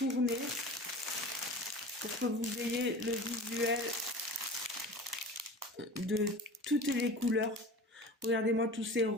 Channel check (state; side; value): normal; both; correlation 0.36